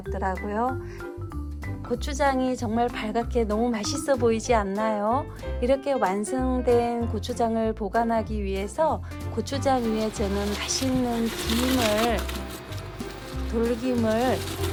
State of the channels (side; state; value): both; identical; correlation 1.00